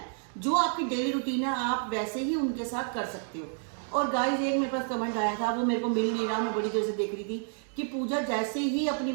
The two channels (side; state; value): left; silent; 58 dB below the other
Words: जो आपकी डेली रूटीन है आप वैसे ही उनके साथ कर सकते हो। और गाइस एक मेरे पास कमेंट आया था, वो मेरे को मिल नहीं रहा, मैं बड़ी देर से देख रही थी कि पूजा जैसे ही अपनी